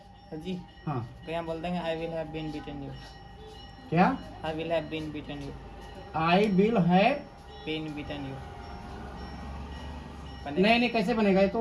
सर जी हाँ, तो यहाँ बोल देंगे I will have been beaten you, क्या I will have been beaten you, I will have, been beaten you. नहीं नहीं कैसे बनेगा, ये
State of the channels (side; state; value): both; identical; correlation 1.00